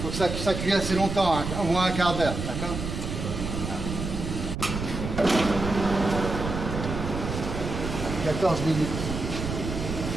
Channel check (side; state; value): right; noise; rumble, 5 dB below the sound